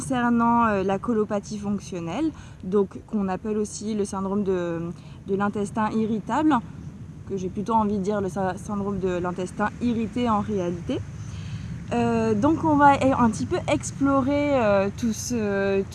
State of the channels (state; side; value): identical; both; correlation 1.00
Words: la colopathie fonctionnelle, donc qu'on appelle aussi le syndrome de l'intestin irritable, que j'ai plutôt envie de dire le syndrome de l'intestin irrité en réalité. Donc on va un petit peu explorer tout